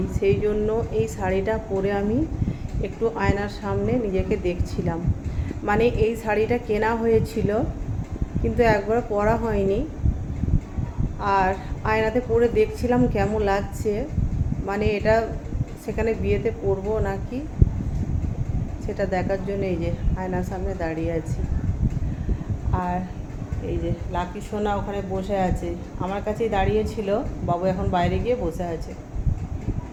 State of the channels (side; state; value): both; identical; correlation 1.00